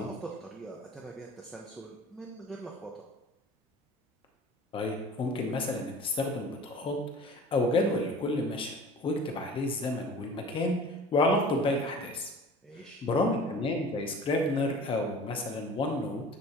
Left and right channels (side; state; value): both; normal; correlation 0.42